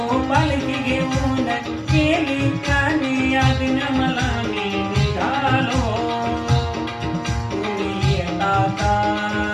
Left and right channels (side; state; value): both; identical; correlation 1.00